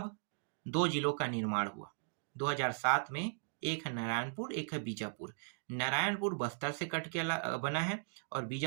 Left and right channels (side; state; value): left; silent; digital silence